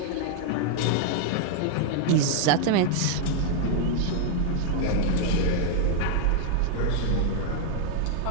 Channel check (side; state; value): both; different; correlation 0.00